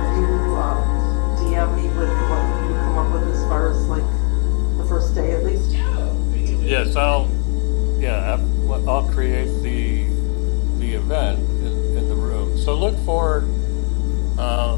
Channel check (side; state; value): right; quieter; 37.6 dB